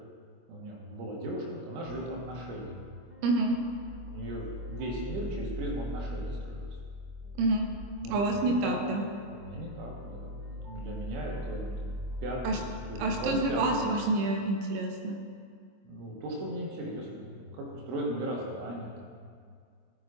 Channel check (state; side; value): late; left; 25 ms